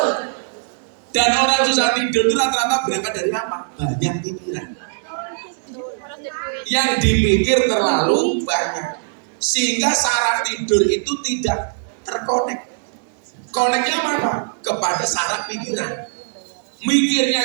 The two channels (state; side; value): silent; left; 64 dB below the other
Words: Dan orang susah tidur itu rata-rata berangkat dari apa? Banyak pikiran. Yang dipikir terlalu banyak. Sehingga saraf tidur itu tidak terkonek. Koneknya apa? Kepada saraf pikiran.